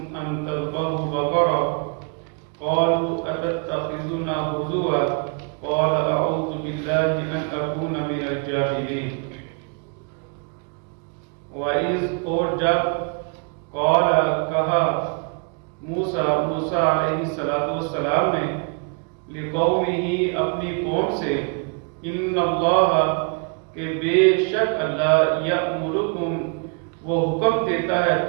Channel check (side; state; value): left; quieter; 38.5 dB